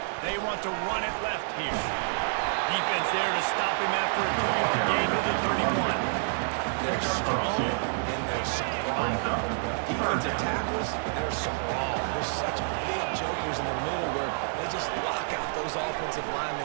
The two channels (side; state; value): left; silent; 59 dB below the other